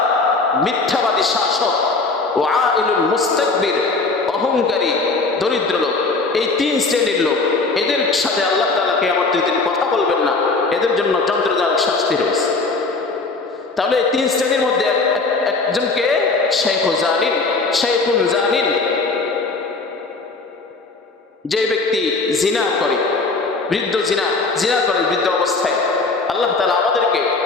মিথ্যাবাদী শাসক। ও আইলুল মুস্তাকবির, অহংকারী দরিদ্র লোক। এই তিন শ্রেণীর লোক, এদের সাথে আল্লাহ তাআলা কিয়ামতের দিন কথা বলবেন না, এদের জন্য যন্ত্রণাদায়ক শাস্তি রয়েছে। তাহলে এই তিন শ্রেণীর মধ্যে একজনকে শাইখুন জানিন, যে ব্যক্তি জিনা করে, জিনা করে বৃদ্ধ অবস্থায়, আল্লাহ তাআলা আমাদেরকে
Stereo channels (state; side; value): quieter; right; 3.8 dB